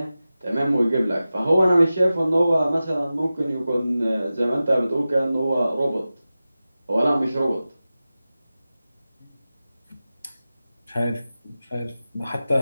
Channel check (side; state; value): both; inverted; correlation -0.95